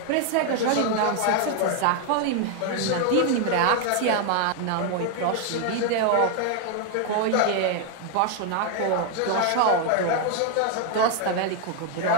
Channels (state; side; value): different; both; correlation 0.00